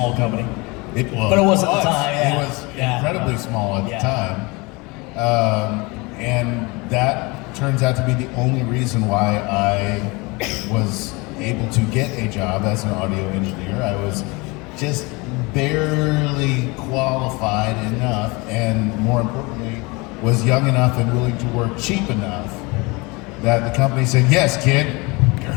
company. It was. But it was at the time, yeah. It was incredibly small at the time. And that turns out to be the only reason why I was able to get a job as an audio engineer. I was just barely qualified enough, and more importantly, was young enough and willing to work cheap enough that the company said, "Yes, kid, you're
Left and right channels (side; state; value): right; quieter; 26.1 dB